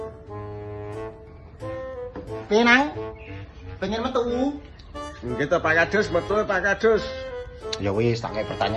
Penang, pengen metu. Gitu Pak Kadus, betul Pak Kadus. Ya wis, tak kayak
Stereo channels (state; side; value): identical; both; correlation 1.00